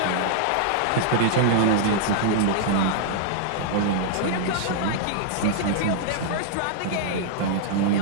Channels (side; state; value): both; different; correlation -0.01